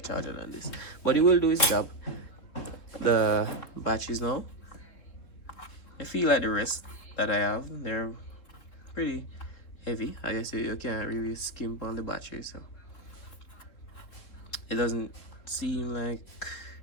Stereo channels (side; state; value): right; late; 3.7 ms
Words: charger than this. But it will do its job. The batteries now, I feel like the rest that I have, they're pretty heavy. I guess you can't really skimp on the battery, so it doesn't seem like